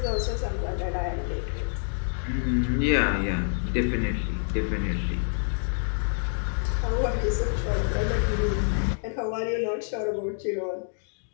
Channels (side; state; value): right; silent; digital silence